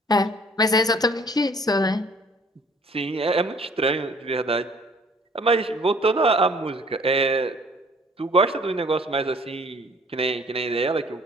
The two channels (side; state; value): both; normal; correlation 0.56